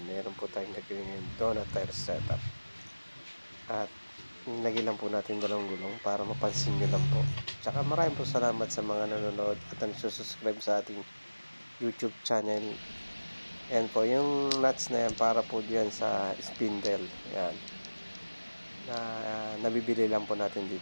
meron po tayong naging donut tire setup. At nagilan po natin dalawang gulong para mapansin nyo lang po. Tsaka maraming po salamat sa mga nanonood at nagsusubscribe sa ating YouTube channel. Yan po, yung nuts na yan para po diyan sa spindle. Yan. Nabibili lang po natin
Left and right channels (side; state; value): both; inverted; correlation -1.00